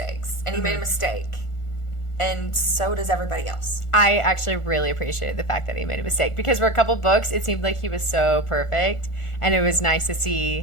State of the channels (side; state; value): right; late; 1.4 ms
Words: And he made a mistake. and so does everybody else. I actually really appreciated the fact that he made a mistake, because for a couple books, it seemed like he was so perfect, and it was nice to